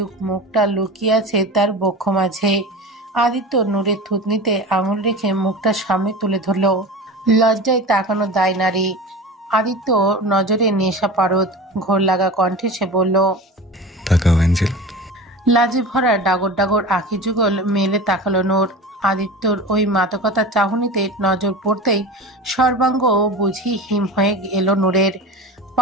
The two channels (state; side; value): normal; both; correlation 0.32